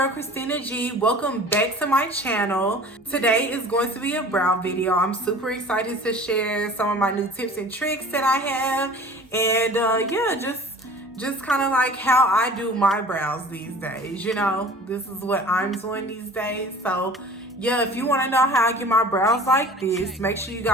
Christina G. Welcome back to my channel. Today is going to be a brow video. I'm super excited to share some of my new tips and tricks that I have, and yeah, just kind of like how I do my brows these days. You know, this is what I'm doing these days. So yeah, if you want to know how I get my brows like this, make sure you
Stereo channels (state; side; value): normal; both; correlation 0.43